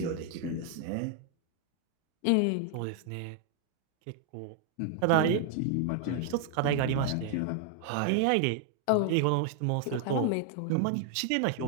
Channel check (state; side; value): different; both; correlation 0.00